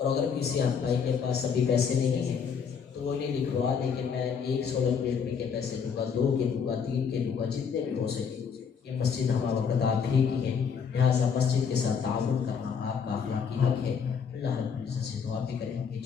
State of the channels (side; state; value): right; quieter; 6.5 dB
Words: اگر کسی بھائی کے پاس ابھی پیسے نہیں ہیں تو وہ انہیں لکھوا دیں کہ میں ایک سولر پلیٹ میں کے پیسے دوں گا، 2 کے دوں گا، 3 کے دوں گا، جتنے بھی ہو سکے۔ یہ مسجد ہمارا وقت آپ ہی کی ہے، لہٰذا مسجد کے ساتھ تعاون کرنا آپ کا اخلاقی حق ہے۔ اللہ رب العزت سے دعا بھی کریں گے